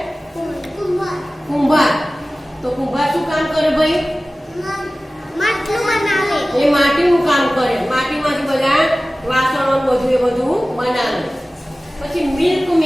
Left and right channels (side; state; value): both; normal; correlation 0.97